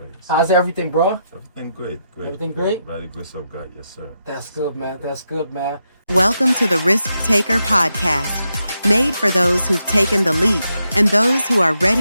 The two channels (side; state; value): both; inverted; correlation -0.83